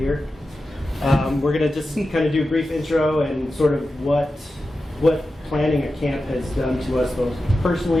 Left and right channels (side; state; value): both; normal; correlation 0.92